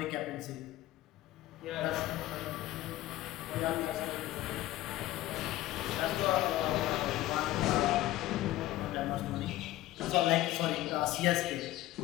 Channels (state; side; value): quieter; right; 15.8 dB